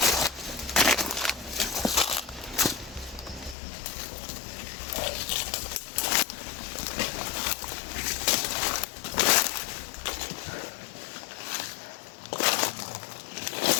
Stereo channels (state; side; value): drops out; right; at 3.6 s